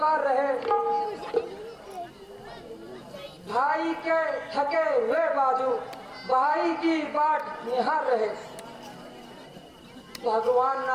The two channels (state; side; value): identical; both; correlation 1.00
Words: रहे। भाई के थके हुए बाजू भाई की बाट निहार रहे। भगवान